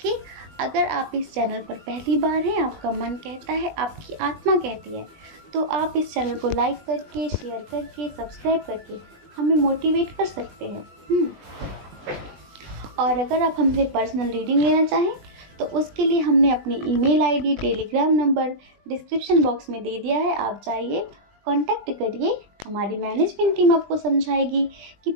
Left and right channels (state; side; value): late; left; 20 ms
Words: अगर आप इस चैनल पर पहली बार हैं, आपका मन कहता है, आपकी आत्मा कहती है, तो आप इस चैनल को लाइक करके, शेयर करके, सब्सक्राइब करके हमें मोटिवेट कर सकते हैं। और अगर आप हमसे पर्सनल रीडिंग लेना चाहें तो उसके लिए हमने अपनी email ID, Telegram number description box में दे दिया है। आप जाइए, कांटेक्ट करिए, हमारी मैनेजमेंट टीम आपको समझाएगी कि